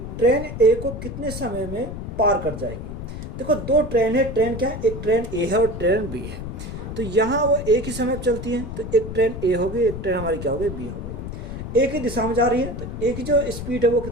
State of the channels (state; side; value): noise; left; rumble, 8 dB below the sound